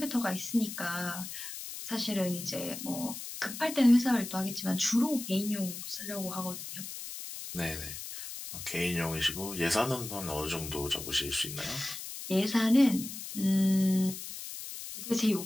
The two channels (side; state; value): left; noise; hiss, 9 dB below the sound